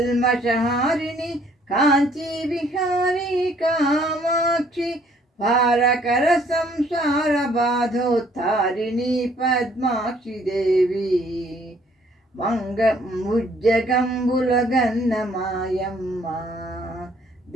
కాంచీ విహారీ కామాక్షి భారకర సంసార బాధోత్తారిణి పద్మాక్షి దేవి ముజ్జగంబుల గన్నమాయమ్మ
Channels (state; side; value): normal; both; correlation 0.62